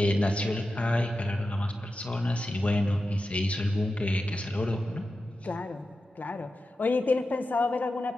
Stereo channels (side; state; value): both; normal; correlation 0.91